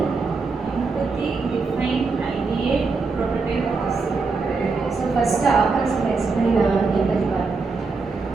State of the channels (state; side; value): quieter; left; 4.3 dB